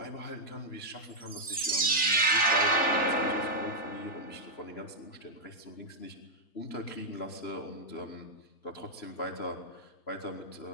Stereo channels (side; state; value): right; late; 3.4 ms